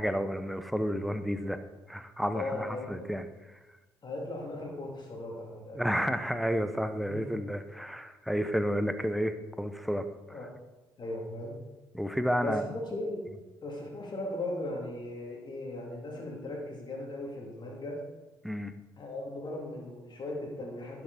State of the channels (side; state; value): both; normal; correlation 0.87